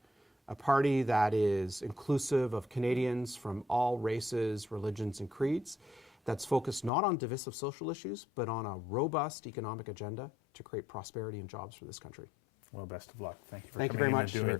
a party that is inclusive of Canadians from all races, religions, and creeds, that's focused not on divisive social issues, but on a robust economic agenda to create prosperity and jobs for this country. Well, best of luck. Thank you for Thank you coming very in much, and doing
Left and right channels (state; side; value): drops out; right; at 6.9 s